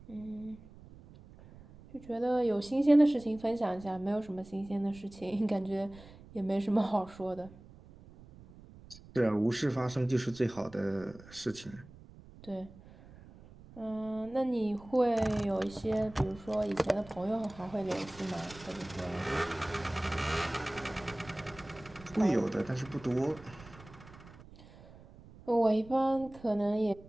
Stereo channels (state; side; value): noise; right; rumble, 20 dB below the sound